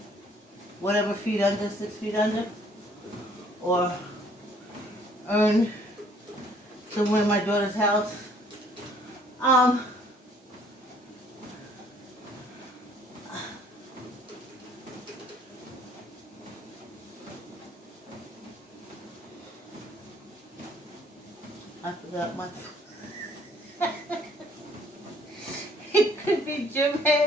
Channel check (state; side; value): normal; both; correlation 0.61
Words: whatever feet under, 6 feet under, or earn somewhere in my daughter's house. I forgot my. It could be gym